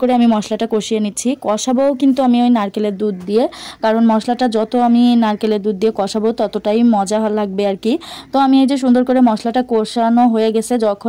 করে আমি মশলাটা কষিয়ে নিচ্ছি। কষাবো কিন্তু আমি ওই নারকেলের দুধ দিয়ে, কারণ মশলাটা যত আমি নারকেলের দুধ দিয়ে কষাবো ততটাই মজা লাগবে আর কি। তো আমি এই যে সুন্দর করে মশলাটা কষানো হয়ে গেছে,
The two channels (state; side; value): identical; both; correlation 1.00